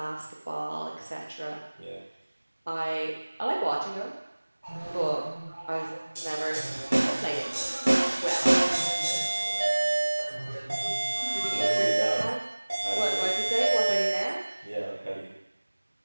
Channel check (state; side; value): inverted; both; correlation -1.00